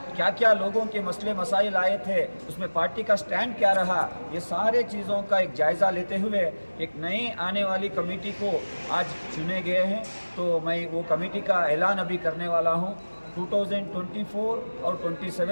क्या क्या लोगों के मसले मसाइल आए थे, उसमें पार्टी का स्टैंड क्या रहा, ये सारे चीज़ों का एक जायज़ा लेते हुए एक नई आने वाली कमेटी को आज चुने गए हैं। तो मैं वो कमेटी का ऐलान अभी करने वाला हूँ। 2024 और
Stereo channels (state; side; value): inverted; both; correlation -1.00